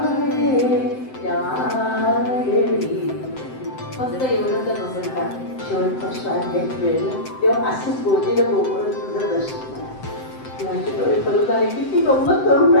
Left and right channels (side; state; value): right; late; 7.8 ms